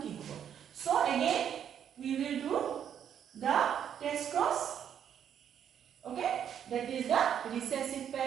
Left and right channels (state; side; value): quieter; left; 9.0 dB